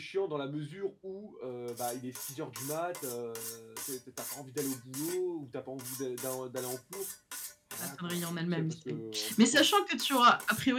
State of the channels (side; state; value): both; identical; correlation 1.00